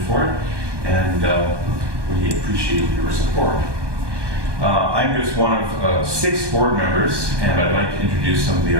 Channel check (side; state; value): left; late; 1.2 ms